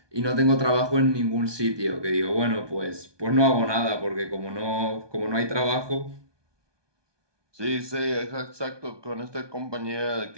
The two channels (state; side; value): late; left; 1.2 ms